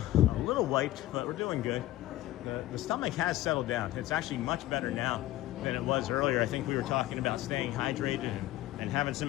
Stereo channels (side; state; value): right; quieter; 15.5 dB